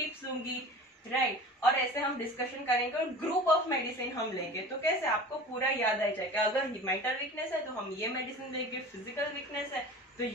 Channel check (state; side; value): normal; both; correlation 0.38